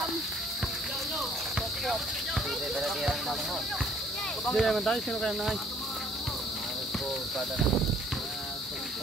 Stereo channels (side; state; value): both; normal; correlation 0.60